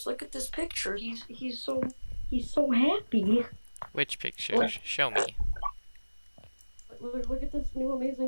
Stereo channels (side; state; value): both; inverted; correlation -1.00